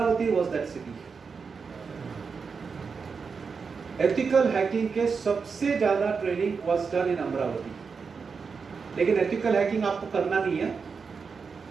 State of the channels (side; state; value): left; quieter; 5.3 dB